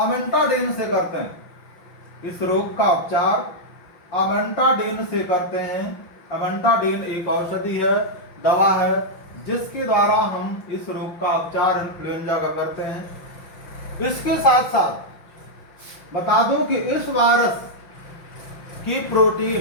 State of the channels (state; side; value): late; right; 5.9 ms